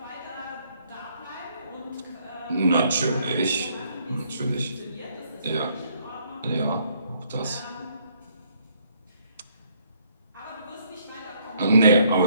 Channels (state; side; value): inverted; both; correlation -0.68